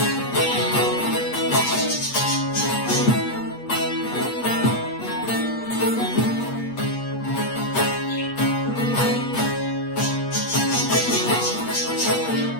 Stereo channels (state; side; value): late; right; 8.4 ms